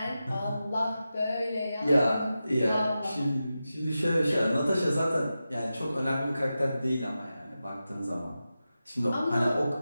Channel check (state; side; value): inverted; both; correlation -0.92